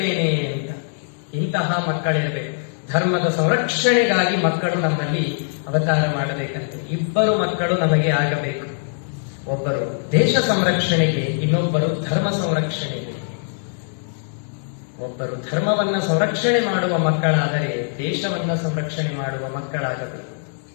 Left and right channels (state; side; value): silent; right; digital silence